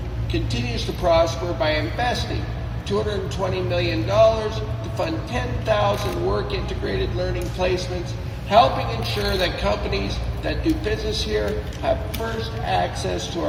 continues to prosper by investing $220 million to fund 10,000 work-integrated learning placements, helping ensure that companies that do business here have first access to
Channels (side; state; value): both; identical; correlation 1.00